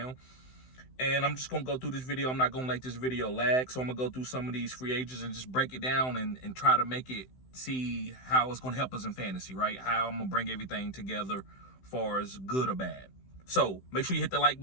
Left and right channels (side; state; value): right; late; 16 ms